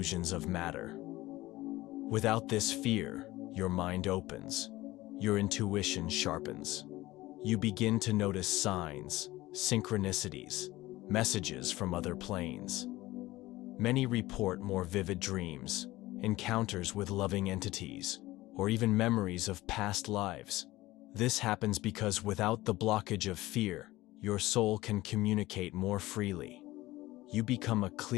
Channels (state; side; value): quieter; right; 18.1 dB